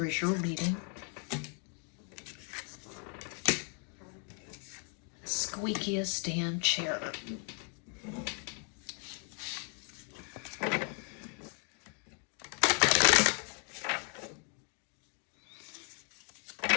is your reading. Squeakiest damn chair.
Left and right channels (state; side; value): quieter; right; 38.1 dB